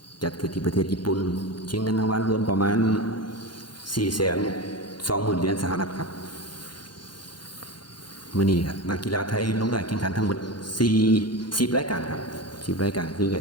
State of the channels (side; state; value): right; late; 0.71 ms